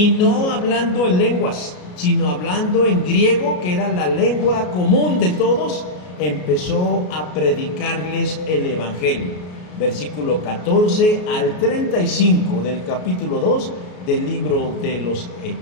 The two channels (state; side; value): late; right; 33 ms